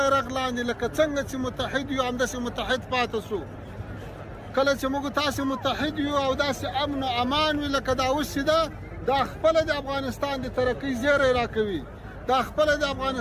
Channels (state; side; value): identical; both; correlation 1.00